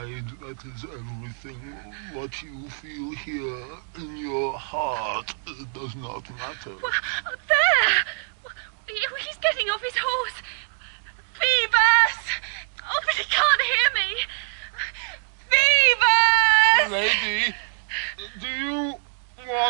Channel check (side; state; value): left; silent; 62 dB below the other